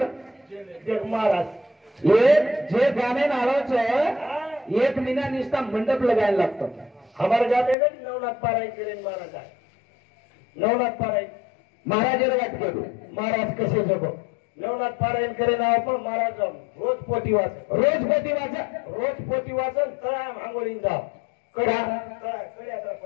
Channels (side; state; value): right; drops out; at 7.8 s